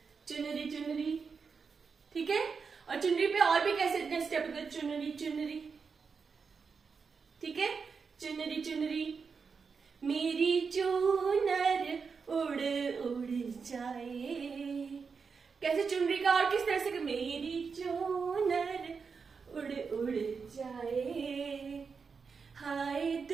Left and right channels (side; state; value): left; quieter; 5.4 dB